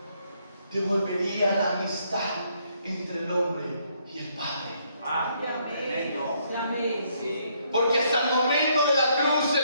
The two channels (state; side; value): inverted; both; correlation -0.71